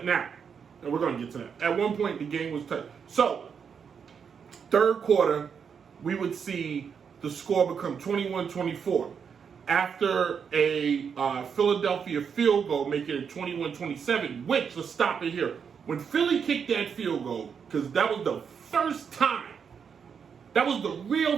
Now, and we're going to get to that. At one point, the game was tight. So, third quarter, we would see the score become 21-24. after a Philadelphia field goal, making it 21-27, which, let's stop it here. When Philly kicked that field goal, because that was the first time, that was the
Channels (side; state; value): left; quieter; 6.7 dB